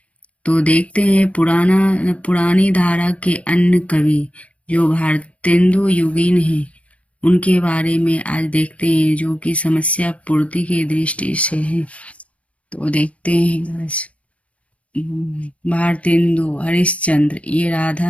तो देखते हैं पुरानी धारा के अन्य कवि जो भारतेंदु युगीन हैं, उनके बारे में आज देखते हैं, जो कि समस्या पूर्ति की दृष्टि से है। तो देखते हैं आज भारतेंदु हरिश्चंद्र, ये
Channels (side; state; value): right; late; 0.064 ms